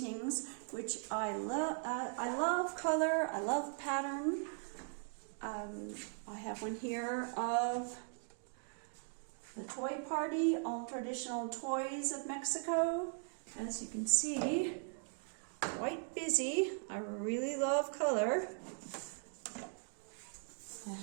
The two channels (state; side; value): silent; left; 52 dB below the other